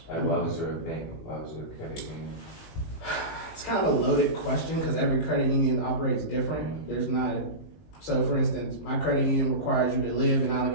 Like, why was there a bank? Why was there a credit union? It's kind of a loaded question because every credit union operates different. There's not, so for instance, my credit union requires you to live in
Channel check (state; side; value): late; right; 19 ms